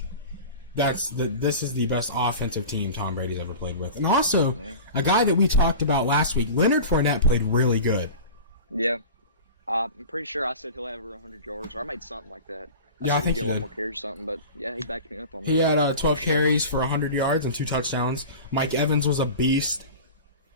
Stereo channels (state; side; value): inverted; both; correlation -0.34